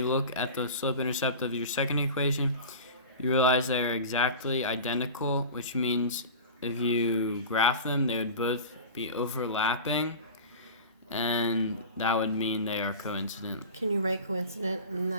look at the slope-intercept of your second equation. You realize they're exactly identical, which means if you graph them, they would both be overlapping, and that would mean they are coincident. Can you write coincident in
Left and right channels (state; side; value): inverted; both; correlation -0.33